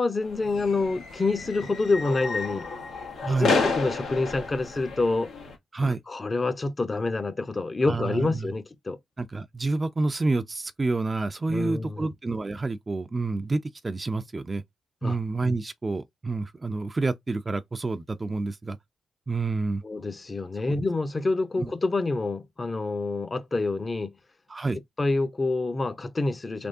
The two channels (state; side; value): normal; both; correlation 0.90